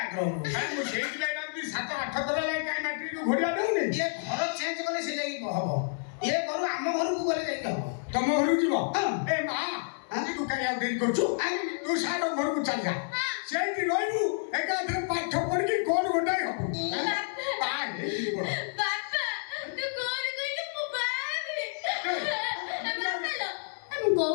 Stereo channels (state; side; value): silent; right; digital silence